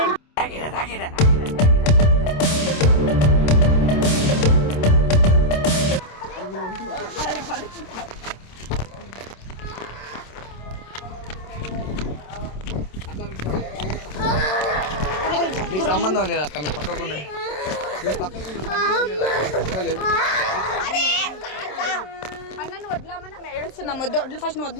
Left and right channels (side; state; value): right; late; 27 ms